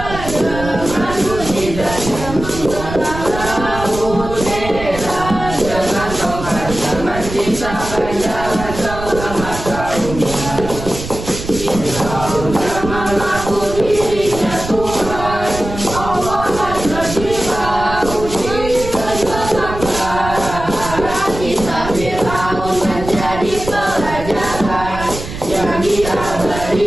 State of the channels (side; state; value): right; noise; rumble, 9 dB below the sound